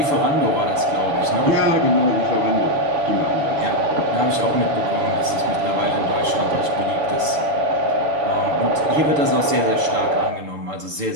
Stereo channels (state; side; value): late; left; 6.8 ms